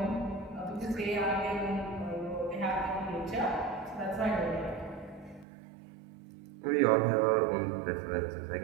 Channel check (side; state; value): left; drops out; at 5.5 s